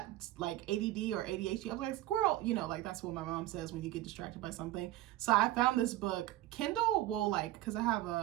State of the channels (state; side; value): quieter; left; 15.6 dB